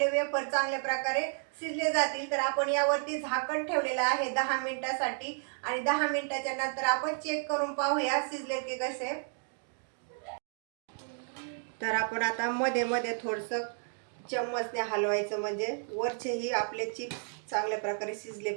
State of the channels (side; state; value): left; silent; 55 dB below the other